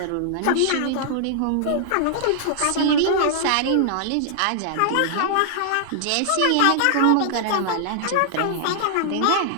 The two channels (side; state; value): both; different; correlation -0.01